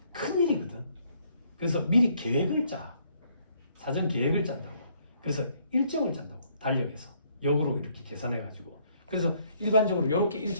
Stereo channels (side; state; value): both; inverted; correlation -0.67